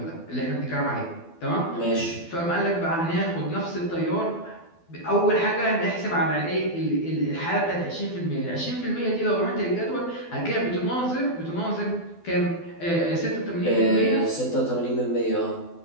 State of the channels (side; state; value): right; late; 12 ms